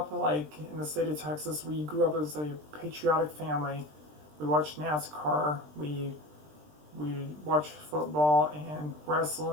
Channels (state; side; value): late; left; 20 ms